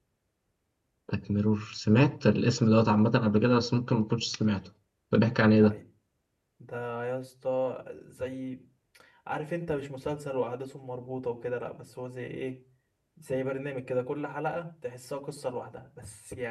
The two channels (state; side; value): identical; both; correlation 1.00